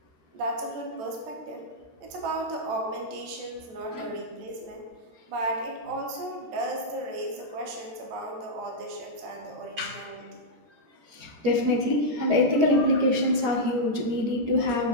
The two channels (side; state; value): left; late; 14 ms